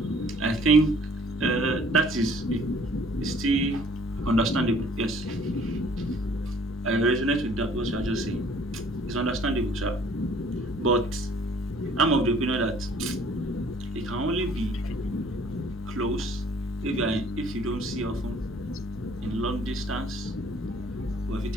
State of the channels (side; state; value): both; normal; correlation 0.56